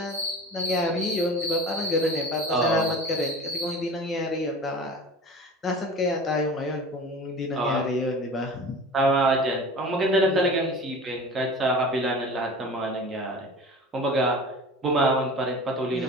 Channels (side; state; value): both; normal; correlation 0.37